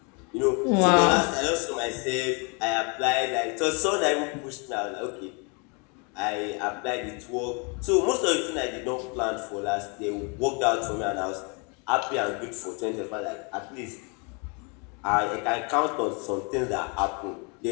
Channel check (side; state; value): right; quieter; 33.5 dB